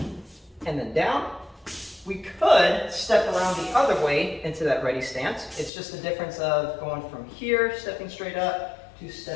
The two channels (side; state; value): right; drops out; at 5.7 s